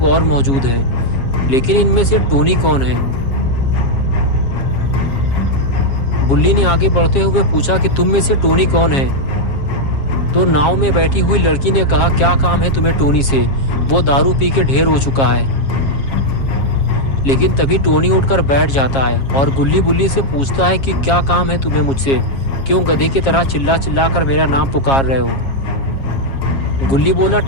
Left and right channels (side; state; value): right; late; 7.4 ms